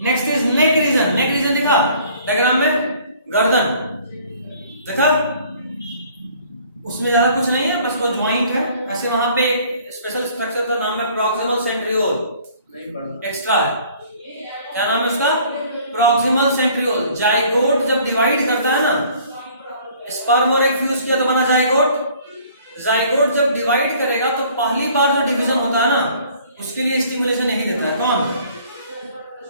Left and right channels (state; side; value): inverted; both; correlation -0.55